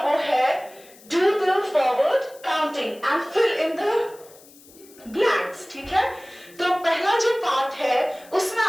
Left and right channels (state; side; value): noise; left; hiss, 24 dB below the sound